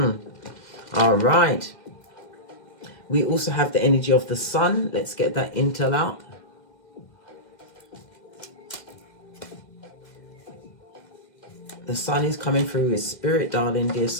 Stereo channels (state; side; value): late; right; 1.9 ms